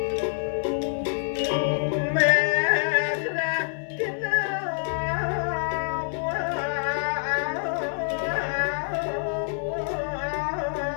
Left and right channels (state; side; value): silent; right; 61 dB below the other